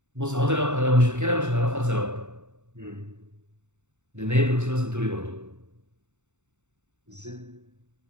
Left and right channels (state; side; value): late; left; 0.84 ms